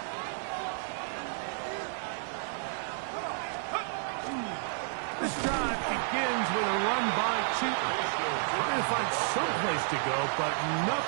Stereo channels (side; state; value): left; silent; digital silence